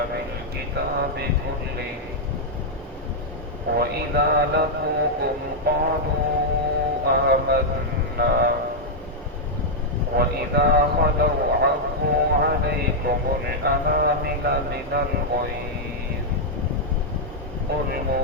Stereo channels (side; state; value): both; normal; correlation -0.04